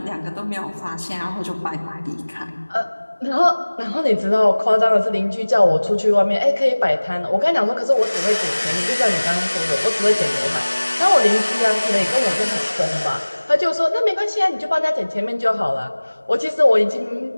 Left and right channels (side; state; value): both; inverted; correlation -1.00